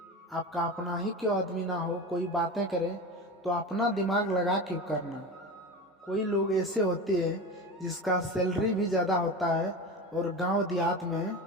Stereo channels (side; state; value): both; normal; correlation 0.27